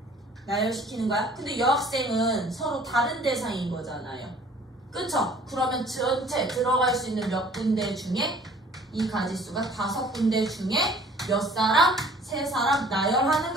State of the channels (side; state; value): both; normal; correlation 0.53